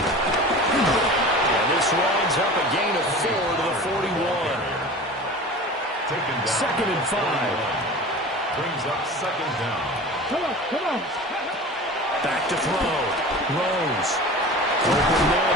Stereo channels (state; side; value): normal; both; correlation 0.37